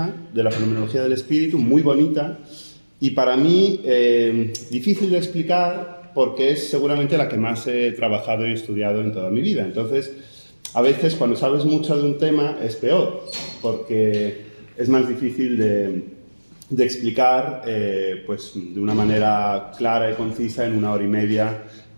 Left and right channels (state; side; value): inverted; both; correlation -1.00